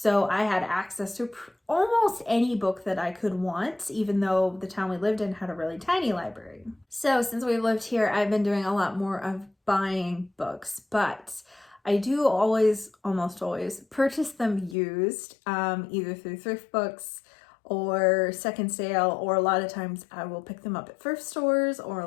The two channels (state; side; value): drops out; right; at 14.8 s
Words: I had access to almost any book that I could want, even though the town we lived in had a really tiny library. So since we've lived here, I've been doing a lot more of buying books, but I do almost always purchase them used, either through thrift books or second sale, or a lot of times I will pick them up at thrift stores or